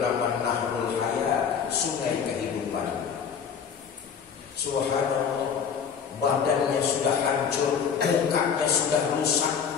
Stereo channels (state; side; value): quieter; right; 7.0 dB